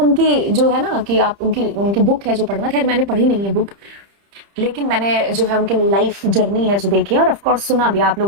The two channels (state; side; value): late; left; 30 ms